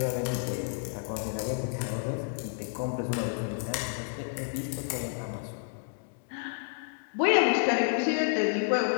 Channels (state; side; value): silent; right; digital silence